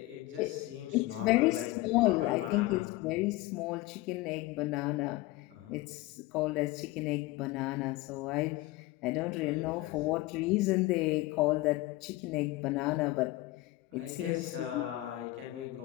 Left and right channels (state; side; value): quieter; right; 19.0 dB